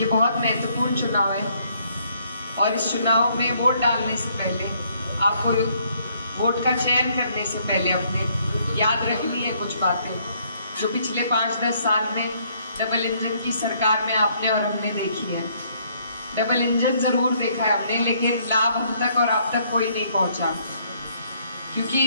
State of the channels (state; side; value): inverted; both; correlation -0.67